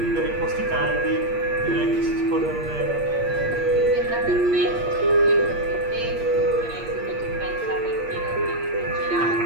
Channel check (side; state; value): left; late; 8.6 ms